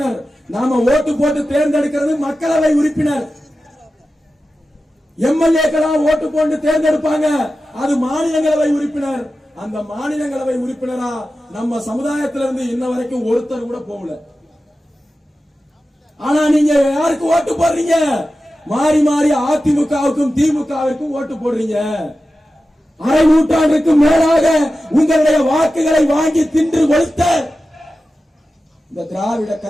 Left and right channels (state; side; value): normal; both; correlation 0.93